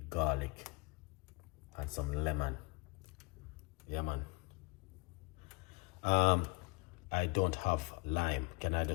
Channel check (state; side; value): quieter; right; 27.8 dB